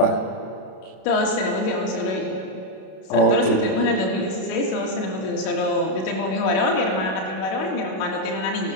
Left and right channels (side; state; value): right; late; 32 ms